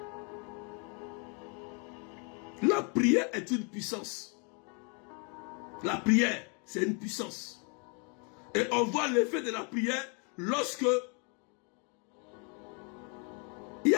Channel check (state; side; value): quieter; right; 36.1 dB